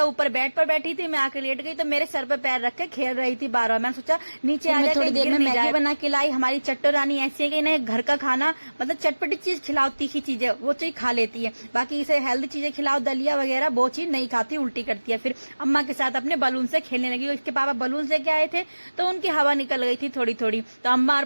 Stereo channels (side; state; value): both; inverted; correlation -1.00